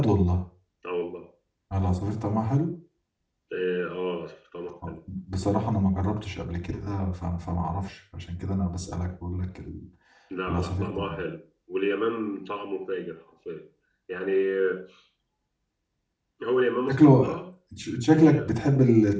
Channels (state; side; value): identical; both; correlation 1.00